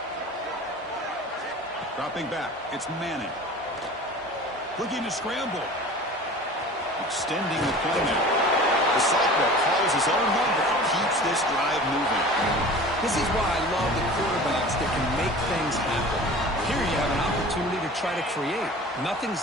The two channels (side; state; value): both; normal; correlation 0.40